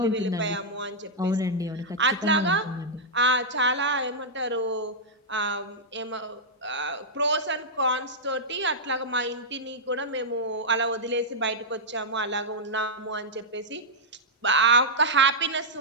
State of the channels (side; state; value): both; normal; correlation -0.07